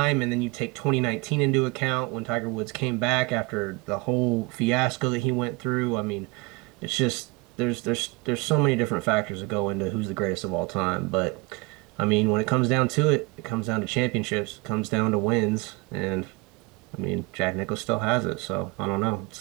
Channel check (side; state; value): left; quieter; 24.9 dB